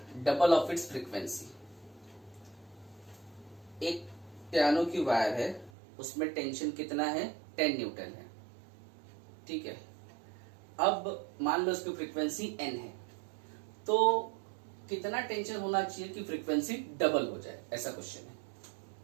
double of its frequency? एक पियानो की वायर है, उसमें टेंशन कितना है 10 न्यूटन है। ठीक है, अब मान लो उसकी फ्रीक्वेंसी n है, तो कितना टेंशन होना चाहिए कि फ्रीक्वेंसी डबल हो जाए, ऐसा क्वेश्चन है।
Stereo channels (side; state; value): left; drops out; at 5.7 s